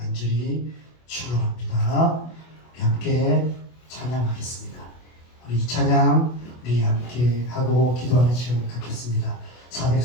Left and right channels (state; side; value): late; right; 24 ms